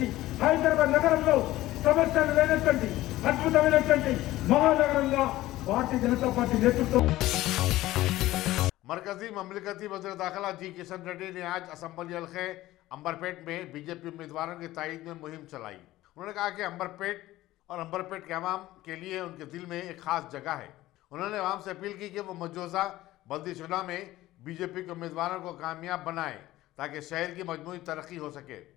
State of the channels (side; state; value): right; quieter; 16.3 dB